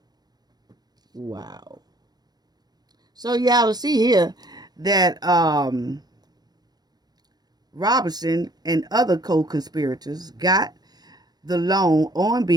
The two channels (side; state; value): left; late; 0.19 ms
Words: So y'all see here that Robinson and other co-conspirators got the loan on